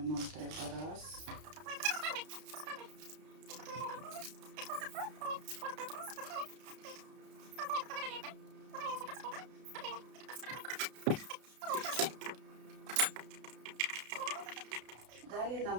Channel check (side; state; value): left; late; 32 ms